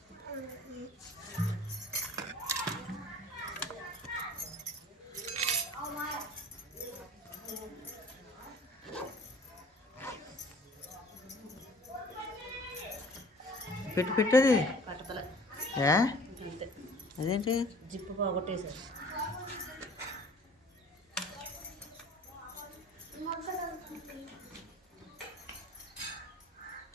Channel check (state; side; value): normal; both; correlation 0.47